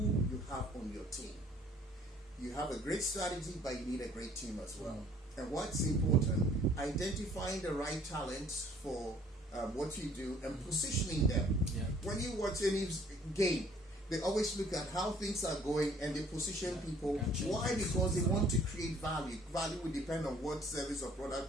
you have on your team. You have a great strategy, but you need a great team as well. And what's important, identifying the right talents for what you do and positioning them. When you watch any game, they always look at how things are going and they position people. Why? Because they want to create value. Value will depend on what service or product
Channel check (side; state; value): both; normal; correlation 0.58